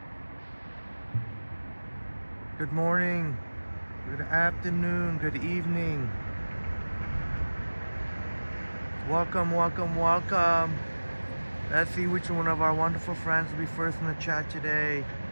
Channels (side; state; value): both; inverted; correlation -1.00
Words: Good morning, good afternoon, good evening. Welcome, welcome, welcome. Let's see which one of our wonderful friends will be first in the chat today.